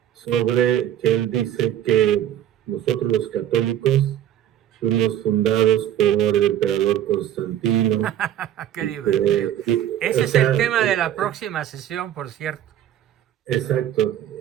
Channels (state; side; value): quieter; left; 11.1 dB